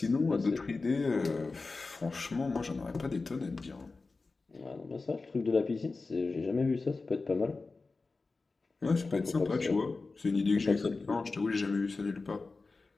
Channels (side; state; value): right; quieter; 3.8 dB